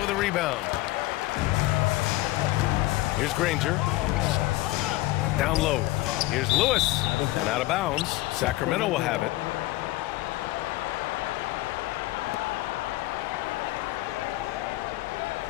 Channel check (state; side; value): quieter; right; 18.2 dB